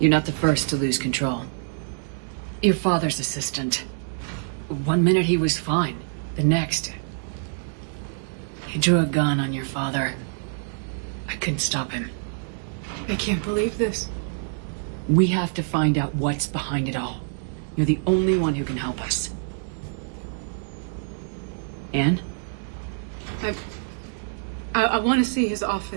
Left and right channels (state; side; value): silent; left; 58 dB below the other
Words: not the first to lose control. Your father's assistant. One minute he was fine. The next... he drew a gun on your father. I couldn't stop him. I can't believe this. We have to find out what's behind it all. You're the only one who can help us. Anne? I want to see his